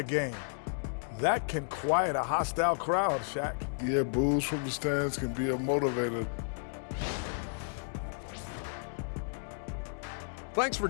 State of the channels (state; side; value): silent; right; digital silence